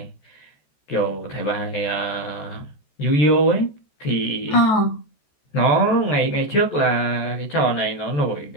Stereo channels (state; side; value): late; right; 14 ms